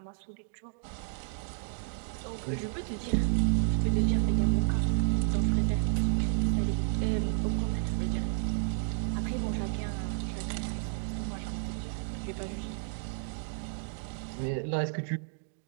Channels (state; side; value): silent; left; digital silence